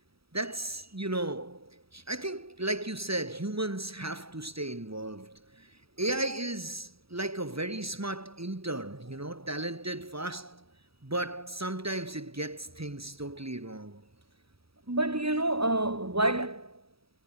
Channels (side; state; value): left; late; 0.77 ms